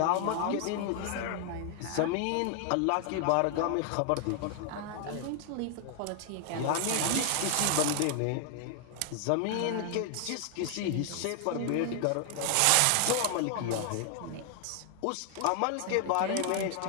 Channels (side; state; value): both; different; correlation 0.00